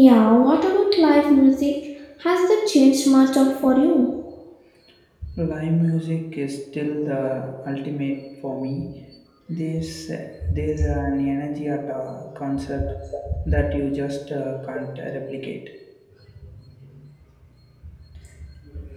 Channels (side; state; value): both; identical; correlation 1.00